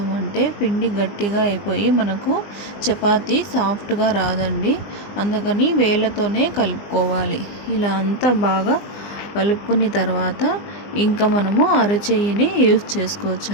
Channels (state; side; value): late; right; 20 ms